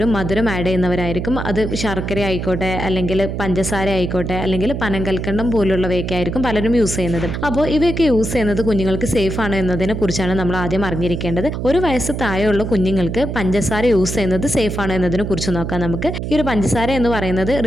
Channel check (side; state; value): right; noise; hum, 4 dB below the sound